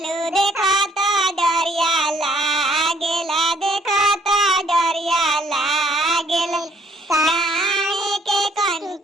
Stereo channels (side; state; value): both; normal; correlation 0.63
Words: देखो तो डरिया लागेला देखो तो डरिया लागेला काहे के